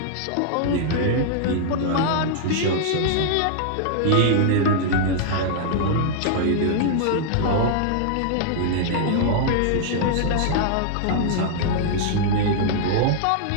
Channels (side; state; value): both; different; correlation -0.01